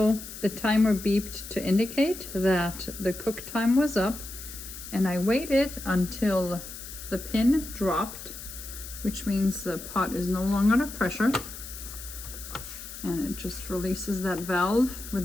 the timer beeped to indicate that the cook time was up, and I waited until the pin dropped, which means the pot is no longer under pressure. And it just releases that valve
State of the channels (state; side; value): noise; left; hiss, 12 dB below the sound